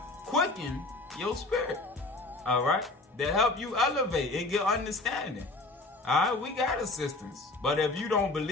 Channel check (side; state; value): right; quieter; 3.0 dB